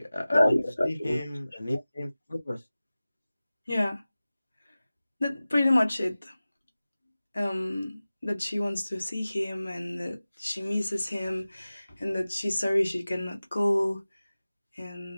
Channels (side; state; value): both; inverted; correlation -0.97